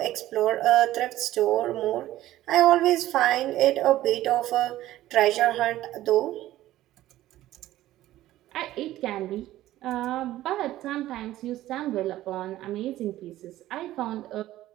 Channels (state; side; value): quieter; left; 14.7 dB